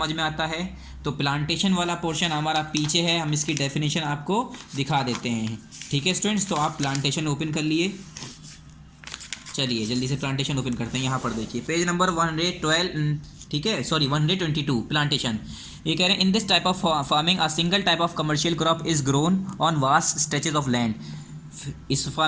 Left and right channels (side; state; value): both; identical; correlation 1.00